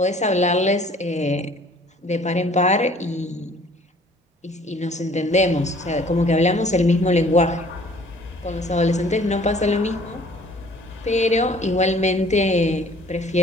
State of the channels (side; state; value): both; normal; correlation 0.54